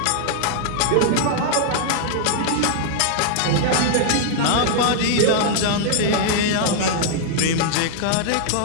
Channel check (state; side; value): different; both; correlation -0.01